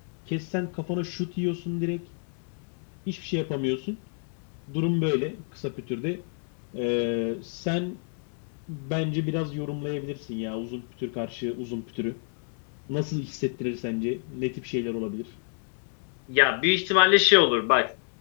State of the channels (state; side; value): silent; right; 56 dB below the other